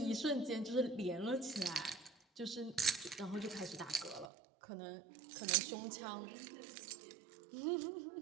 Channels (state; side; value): drops out; left; at 4.3 s